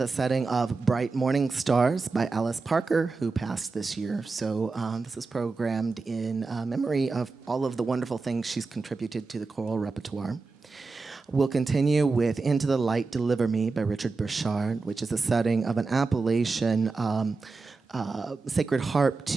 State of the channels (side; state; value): left; quieter; 4.1 dB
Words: setting of Bright Morning Stars by Alice Parker, who passed this year. So this is programmed in memory of all of the wonderful things she's contributed to the choral repertoire. We'll continue with Into the Light, Deliver Me by Richard Burchard, which is a setting of an Appalachian sacred harp